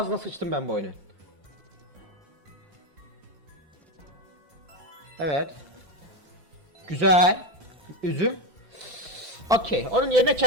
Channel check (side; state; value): left; late; 5.6 ms